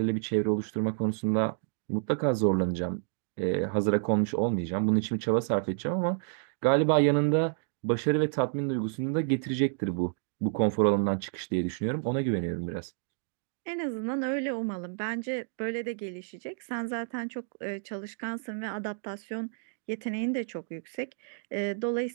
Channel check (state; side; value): silent; left; digital silence